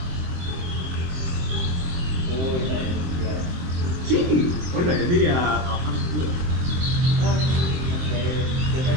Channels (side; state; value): left; late; 23 ms